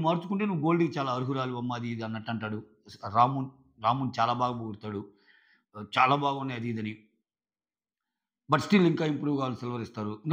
మార్చుకుంటే నువ్వు గోల్డ్‌కి చాలా అర్హురాలు అమ్మ అది ఇది అన్నట్టు అంటాడు. రాము రాముని చాలా బాగా పొగుడుతాడు. చాలా బాగున్నాయి అది ఇదని. బట్ స్టిల్ ఇంకా ఇంప్రూవ్ కావాలి సిల్వర్ ఇస్తారు.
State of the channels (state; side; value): identical; both; correlation 1.00